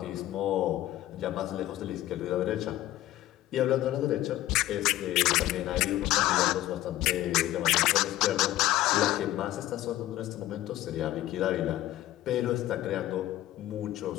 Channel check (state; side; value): quieter; right; 14.8 dB